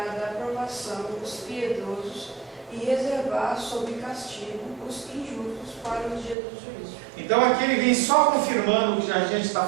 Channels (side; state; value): left; drops out; at 6.4 s